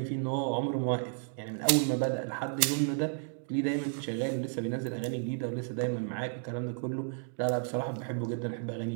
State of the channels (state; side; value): silent; left; 55 dB below the other